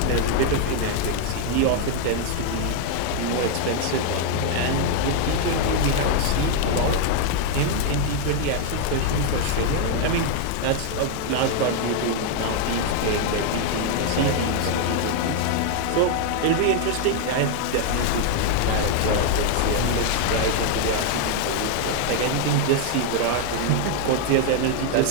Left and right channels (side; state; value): both; different; correlation 0.00